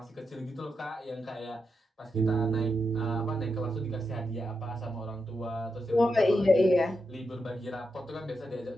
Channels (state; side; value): normal; both; correlation 0.85